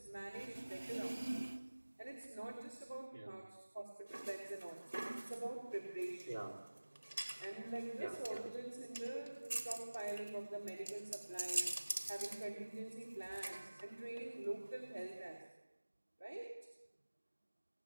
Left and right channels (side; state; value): both; inverted; correlation -1.00